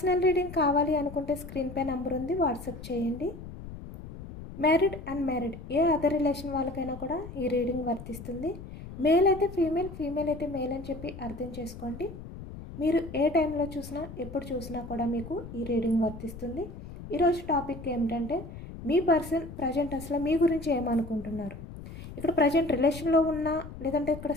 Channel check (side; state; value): left; noise; rumble, 12 dB below the sound